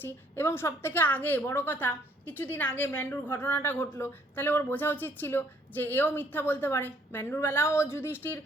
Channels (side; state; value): both; normal; correlation 0.65